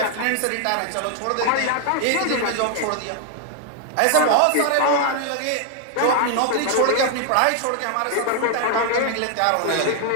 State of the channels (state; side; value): different; both; correlation 0.00